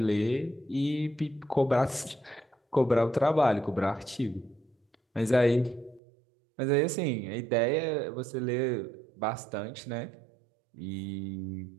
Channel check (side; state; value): left; drops out; at 6.0 s